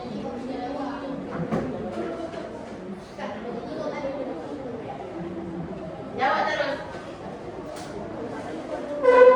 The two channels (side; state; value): both; identical; correlation 1.00